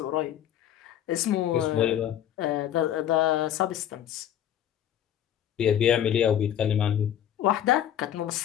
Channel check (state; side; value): quieter; right; 10.6 dB